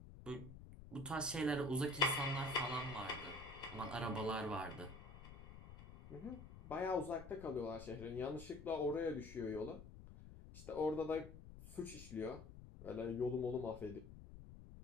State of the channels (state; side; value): noise; left; rumble, 14 dB below the sound